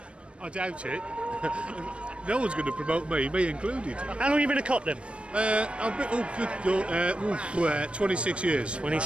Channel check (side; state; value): left; late; 0.059 ms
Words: I doubt it. No one's going to promote me included. How long have you been a cop then? I've been 26 years.